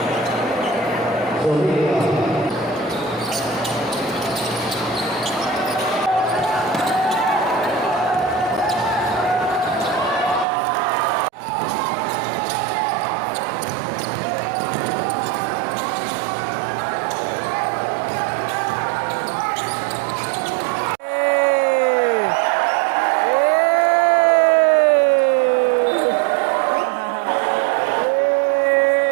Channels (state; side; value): drops out; left; at 10.5 s